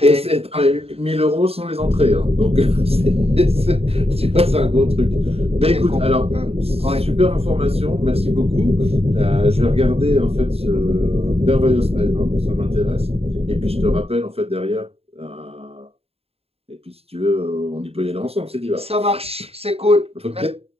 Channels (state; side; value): late; left; 0.29 ms